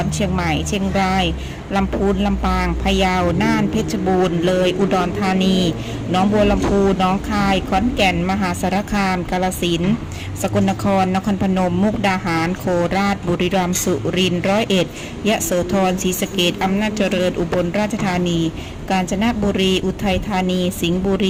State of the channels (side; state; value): both; identical; correlation 1.00